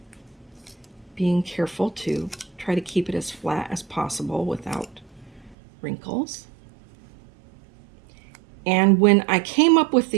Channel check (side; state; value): left; drops out; at 5.6 s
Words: being careful to try to keep it as flat as possible without wrinkles. And when I came up with